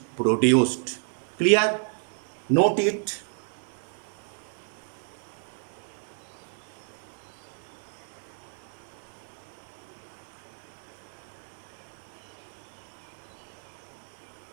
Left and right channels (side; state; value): left; silent; 57 dB below the other